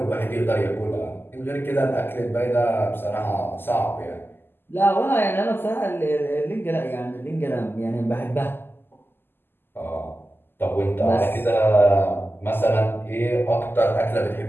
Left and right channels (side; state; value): right; late; 0.10 ms